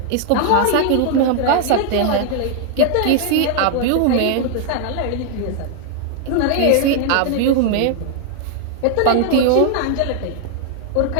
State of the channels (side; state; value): both; different; correlation 0.00